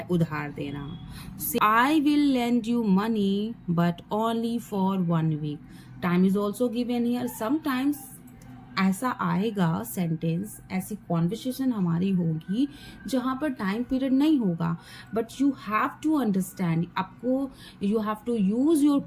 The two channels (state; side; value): identical; both; correlation 1.00